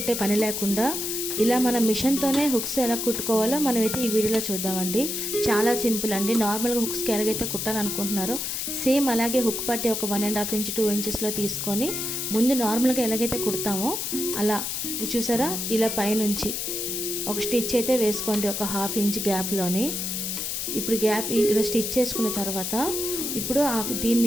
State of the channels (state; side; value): noise; left; hiss, 3 dB below the sound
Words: పని లేకుండా ఇలా మన మిషన్తోనే హుక్స్ ఎలా కుట్టుకోవాలో మనమైతే ఈ వీడియోలో చూద్దామండి. చాలా సింపుల్ అండి. నార్మల్గా హుక్స్కి ఎలాగైతే కుట్టాలనుకుంటున్నారో సేమ్ అలాగే హుక్ పట్టి ఒక 1.5 ఇంచ్ 2 ఇంచెస్లో తీసుకొని ముందు నార్మల్గా ఎలాగైతే కుడతామో అలా చూసారా, ఇలా పైనుంచి ఒక స్టిచ్ అయితే వేసుకోండి ఒక 1/2 ఇంచ్ గ్యాప్లోని. ఇప్పుడు గ్యాప్ ఇలా స్టిచ్ చేసుకున్న తర్వాత ఇప్పుడు